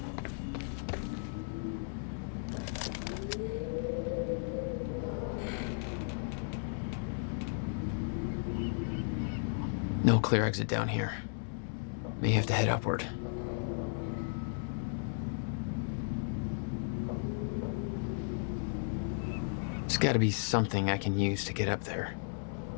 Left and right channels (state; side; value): silent; right; digital silence